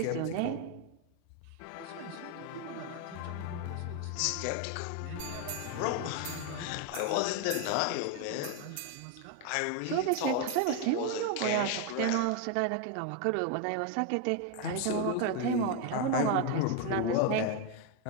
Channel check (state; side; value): different; both; correlation 0.01